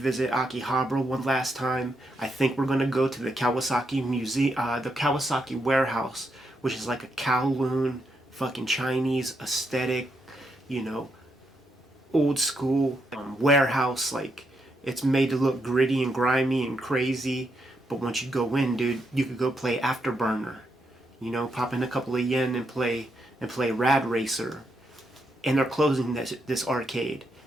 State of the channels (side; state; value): both; normal; correlation 0.80